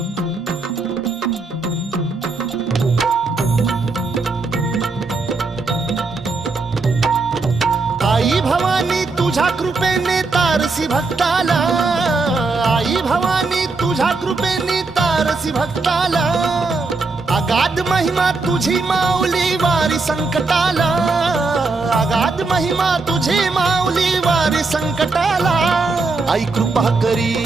आई भवानी तुझ्या कृपेने तारसी भक्ताला, आई भवानी तुझ्या कृपेने तारसी भक्ताला. अगाध महिमा तुझी माऊली वारी संकटाला, अगाध महिमा तुझी माऊली वारी संकटाला. आई कृपा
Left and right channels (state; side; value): quieter; left; 3.9 dB